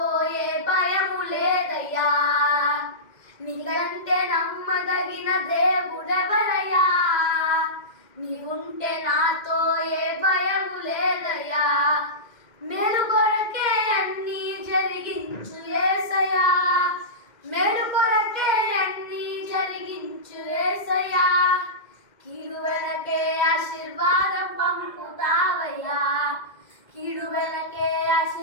ఏ భయము లేదయ్యా. నీకంటే నమ్మదగిన దేవుడెవరయ్యా, నీవుంటే నాతో ఏ భయము లేదయ్యా. మేలు కొరకే అన్నీ జరిగించు యేసయ్యా, మేలు కొరకే అన్నీ జరిగించు యేసయ్యా. కీడు వెనకే ఆశీర్వాదం పంపుతావయ్యా, కీడు వెనకే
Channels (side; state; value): right; late; 2.1 ms